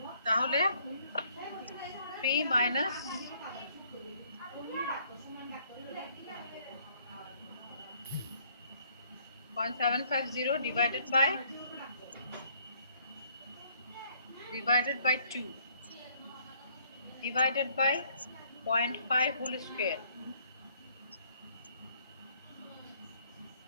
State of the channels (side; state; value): both; inverted; correlation -0.63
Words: তাহলে 3 minus 0.750 divided by 2 divided by 0.5 whole square,